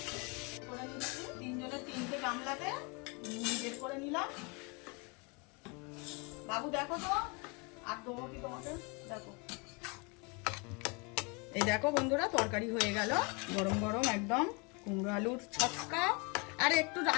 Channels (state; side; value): quieter; right; 31.1 dB